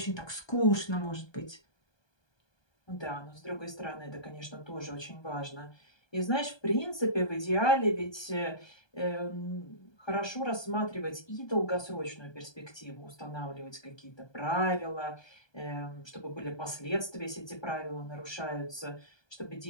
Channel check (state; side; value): late; right; 1.2 ms